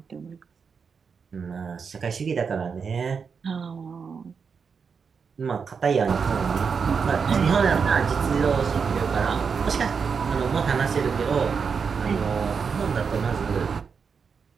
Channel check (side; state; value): left; quieter; 5.9 dB